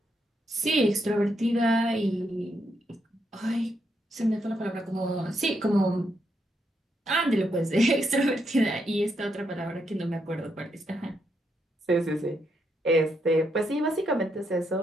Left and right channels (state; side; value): normal; both; correlation 0.79